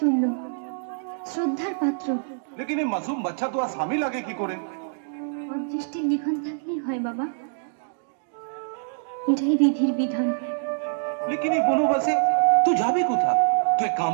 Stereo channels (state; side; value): silent; left; digital silence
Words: শ্রদ্ধার পাত্র। लेकिन ये मासूम बच्चा तो आसामी लगे की करे? অদৃষ্টির লিখন থাকলেই হয় বাবা, এটাই বিধির বিধান। लेकिन ये बोलो बसे तू जाबे कोथा? तू एक काम